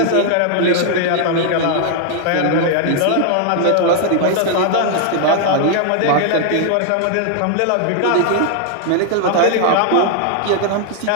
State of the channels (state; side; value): different; both; correlation 0.00